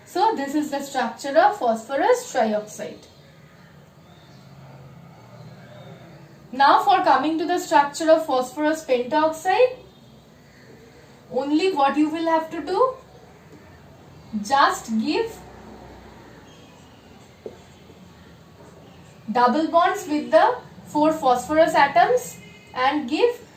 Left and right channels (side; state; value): both; identical; correlation 1.00